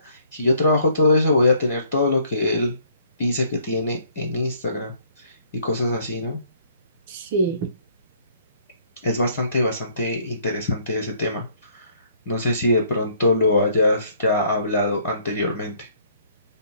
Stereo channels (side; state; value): both; inverted; correlation -0.62